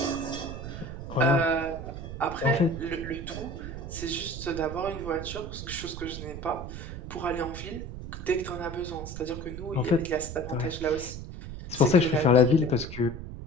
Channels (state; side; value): noise; right; rumble, 9 dB below the sound